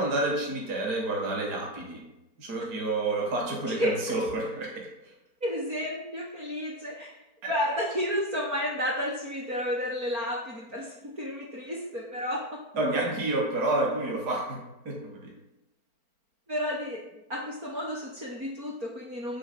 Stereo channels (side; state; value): left; late; 4.4 ms